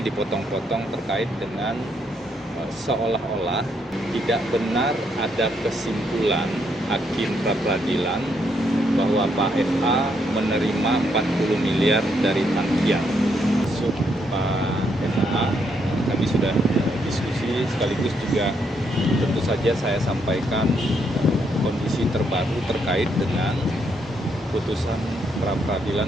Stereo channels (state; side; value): normal; both; correlation 0.75